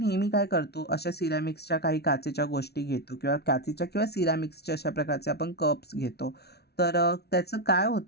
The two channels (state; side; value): late; right; 0.48 ms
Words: काय करतो, अशा सिरॅमिक्सच्या काही काचेच्या गोष्टी घेतो किंवा काचेच्या किंवा सिरॅमिक्सच्या अशा प्रकारचे आपण कप्स घेतो. त्याचं काय